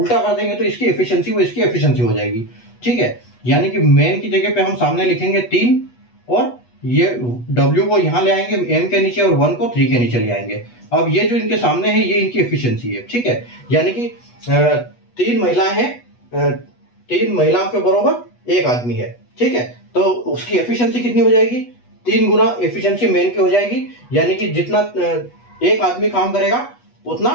कर देंगे तो इसकी एफिशिएंसी वो इसकी एफिशिएंसी हो जाएगी। ठीक है, यानी कि मैन की जगह पे हम सामने लिखेंगे 3 और ये W को यहाँ ले आएंगे M के नीचे और 1 को 3 के नीचे ले आएंगे। अब ये जो इनके सामने है ये इनकी एफिशिएंसी है। ठीक है, यानी कि 3 महिलाएं हैं, 3 महिलाओं के बराबर 1 आदमी है। ठीक है, तो उसकी एफिशिएंसी कितनी हो जाएगी? 3 गुना एफिशिएंसी मेन की हो जाएगी। यानी कि जितना 1 आदमी काम करेगा उतना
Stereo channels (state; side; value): late; right; 8.2 ms